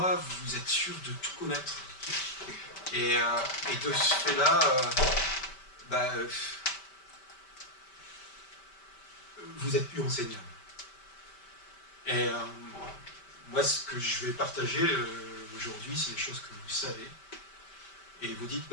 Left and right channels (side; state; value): right; late; 5.1 ms